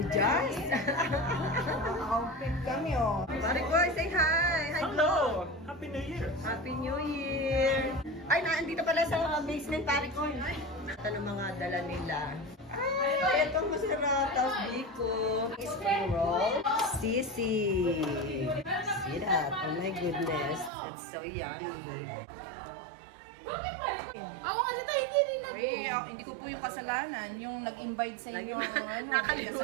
Outfit kami oh. Marikoy, say hi. Hi, Hello. Happy New Year. Happy New Year. Ay, nandito pala sa basement, Marikoy. Ito ng mga dala nila. Ay, itong masarap. Tapos biko. Spring roll. Sisi. See that? Oh my goodness. It's so yummy. Ako kasi tayo hindi nila po. Hindi ko po yung kasalanan. Yung nag-invite sa inyo, may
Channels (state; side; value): drops out; left; at 20.7 s